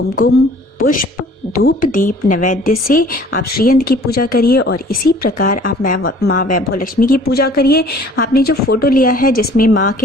पुष्प, धूप, दीप, नैवेद्य से आप श्रीयंत्र की पूजा करिए और इसी प्रकार आप माँ वैभव लक्ष्मी की पूजा करिए। आपने जो फोटो लिया है जिसमें माँ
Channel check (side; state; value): both; normal; correlation 0.52